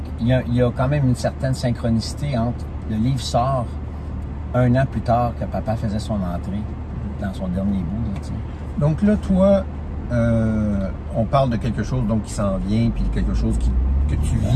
il y a quand même une certaine synchronicité entre le livre sort 1 an plus tard que papa faisait son entrée dans son dernier bout. Là, donc là, toi, on parle de quelque chose donc, qui s'en vient, puis quelque chose que tu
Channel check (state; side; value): identical; both; correlation 1.00